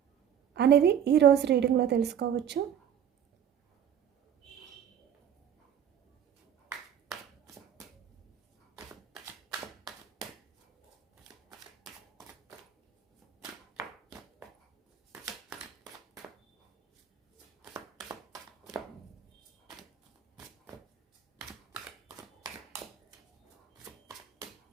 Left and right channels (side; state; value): left; quieter; 9.1 dB